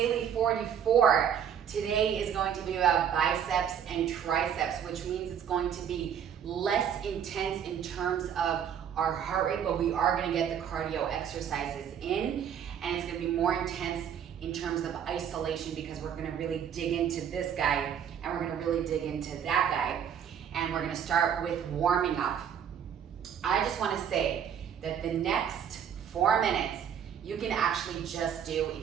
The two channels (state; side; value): quieter; left; 8.6 dB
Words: 44. Today is going to be about biceps and triceps, which means it's going to be less intense in terms of our heart rate, but we are going to get the cardio exercises in, and it's going to be more intense in terms of isolation because we're going to really dig into this guy and we're going to really dig into that guy, and we're going to start with warming up. I just want to say that the next 4 minutes you can actually just do